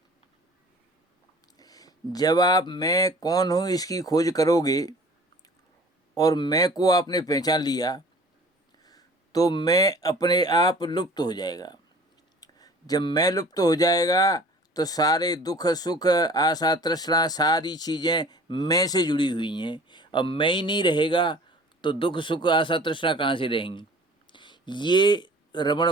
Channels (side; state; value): both; normal; correlation 0.47